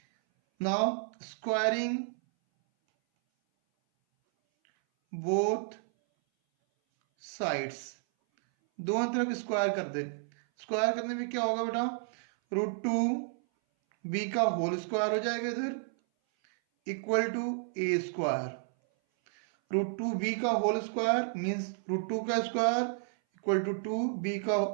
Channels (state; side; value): silent; left; 57 dB below the other